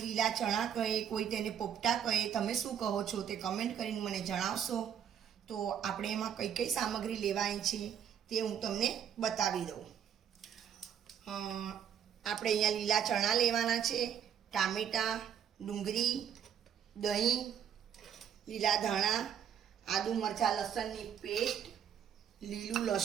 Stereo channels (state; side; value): quieter; left; 8.7 dB